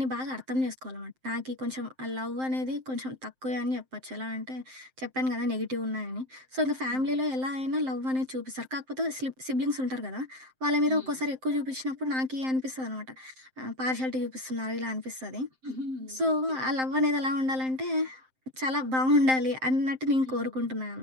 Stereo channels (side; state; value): left; late; 7.7 ms